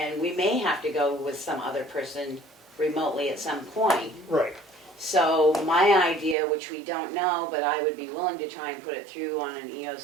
we may have to go with some other person remotely at some point. Right. So my idea, which we don't know, but I would be willing to try and put it through on an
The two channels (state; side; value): drops out; left; at 6.4 s